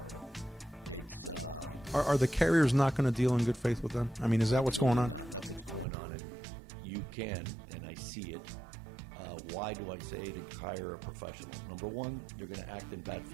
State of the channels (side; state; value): left; drops out; at 5.9 s